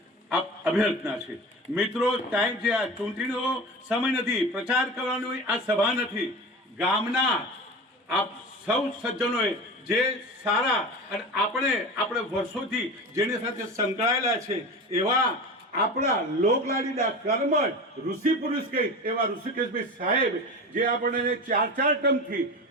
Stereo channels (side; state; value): both; normal; correlation 0.30